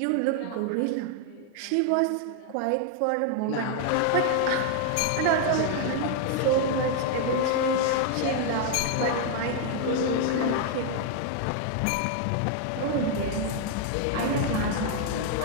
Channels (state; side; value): different; both; correlation 0.00